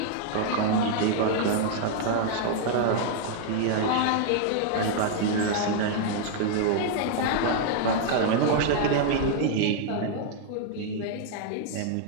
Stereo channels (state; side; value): different; both; correlation 0.00